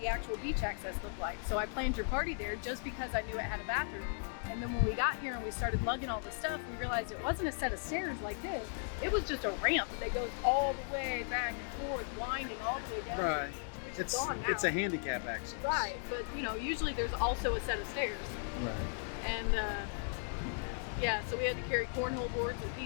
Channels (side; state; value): right; silent; 53 dB below the other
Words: the actual beach access looked like. So I planned your party there just because I knew it had a bathroom. And then when we got here and we started lugging all the stuff, we realized it wasn't a set of stairs like this. It was just a ramp that goes all the way back and forth, winding all the way down. Right. It's a handicap access. Right, but you know, usually there's also a set of stairs. Right. And yeah, so we had to carry cornhole boards and